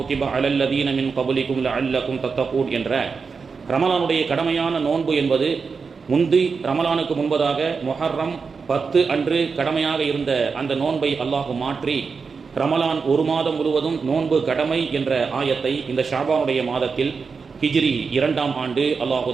அலல்லதீன மின் கபலிக்கும் லஅல்லக்கும் தத்தகூன் என்ற ரமலானுடைய கடமையான நோன்பு என்பது ரமலானுக்கு முன்பதாக முஹர்ரம் 10 அன்று கடமையாக இருந்த அந்த நோன்பை அல்லாஹ் மாற்றி ரமலான் ஒரு மாதம் முழுவதும் நோன்பு கடமை என்ற ஆயத்தை இந்த ஷாபானுடைய மாதத்தில் ஹிஜ்ரி 2ஆம் ஆண்டு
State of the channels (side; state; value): left; quieter; 5.1 dB